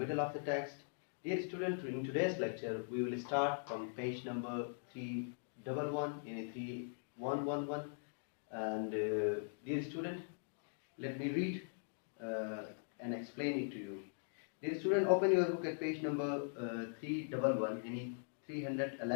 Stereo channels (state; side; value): silent; right; digital silence